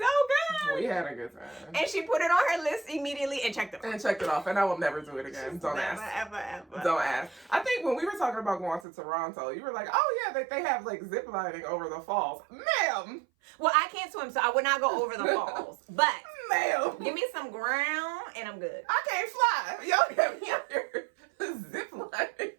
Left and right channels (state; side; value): drops out; left; at 8.8 s